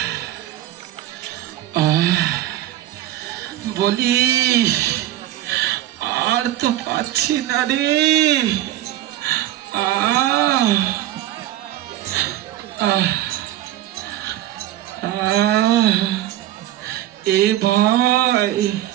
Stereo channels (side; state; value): left; quieter; 13.7 dB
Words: বলি আর তো পাচ্ছি না রে। এ ভাই